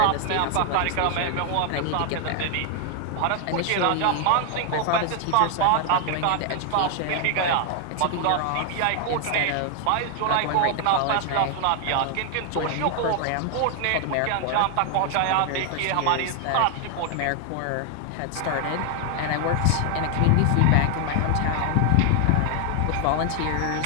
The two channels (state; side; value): different; both; correlation 0.00